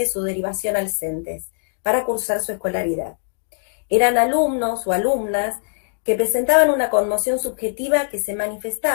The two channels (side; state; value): right; silent; digital silence